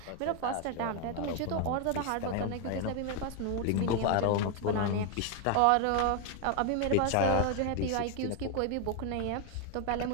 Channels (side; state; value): both; different; correlation 0.00